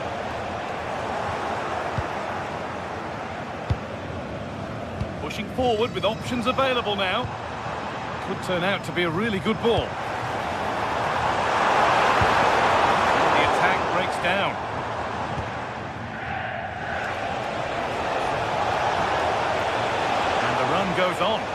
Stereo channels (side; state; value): both; identical; correlation 1.00